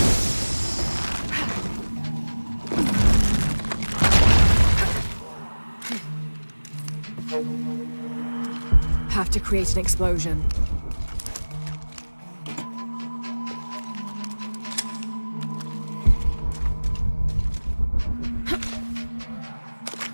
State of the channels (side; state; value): both; inverted; correlation -1.00